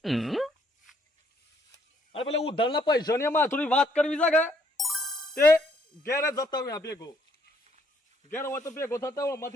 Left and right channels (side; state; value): both; normal; correlation 0.68